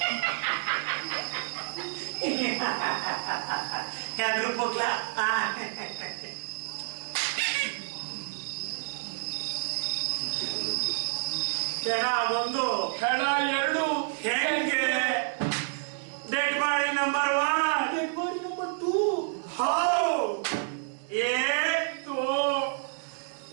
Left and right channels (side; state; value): left; silent; digital silence